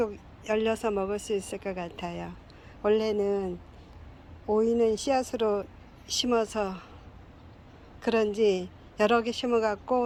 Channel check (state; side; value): identical; both; correlation 1.00